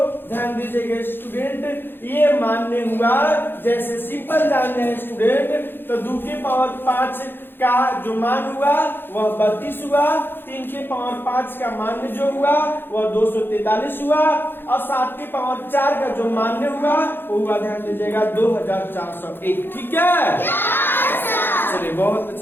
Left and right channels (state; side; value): late; right; 0.10 ms